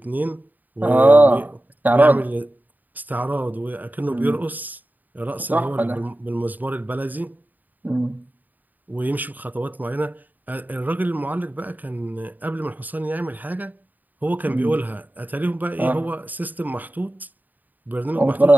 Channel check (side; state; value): left; late; 0.084 ms